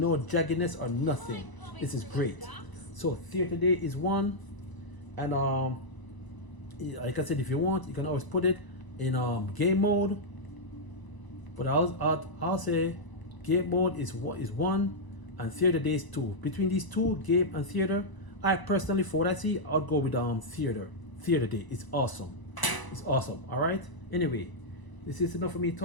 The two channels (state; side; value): late; right; 1.0 ms